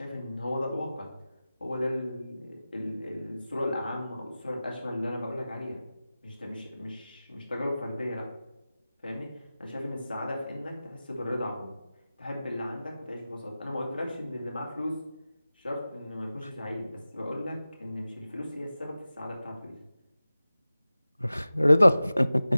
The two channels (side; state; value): both; inverted; correlation -0.96